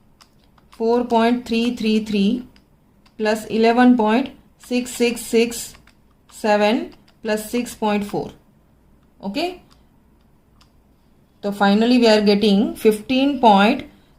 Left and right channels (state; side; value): identical; both; correlation 1.00